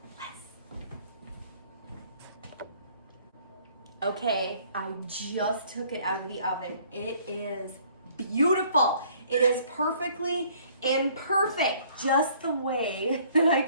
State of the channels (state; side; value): inverted; both; correlation -0.59